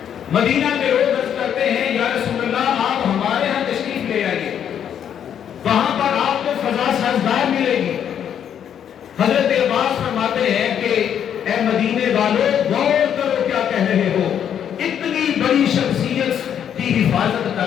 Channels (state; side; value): quieter; right; 9.0 dB